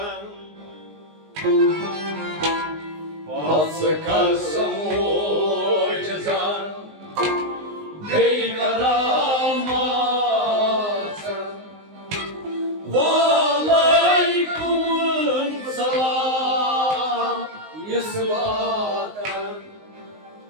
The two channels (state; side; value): late; left; 19 ms